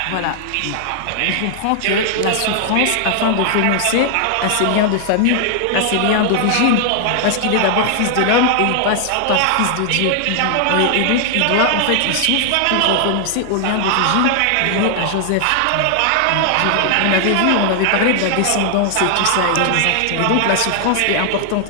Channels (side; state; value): both; different; correlation 0.00